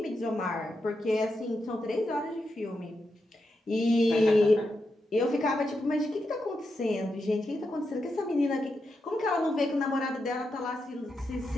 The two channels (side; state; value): both; normal; correlation 0.86